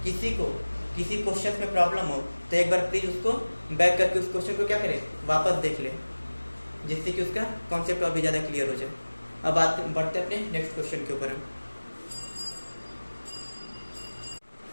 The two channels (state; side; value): inverted; both; correlation -1.00